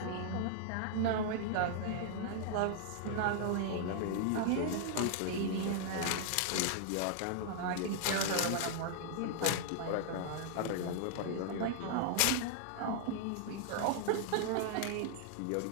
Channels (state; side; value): different; both; correlation -0.01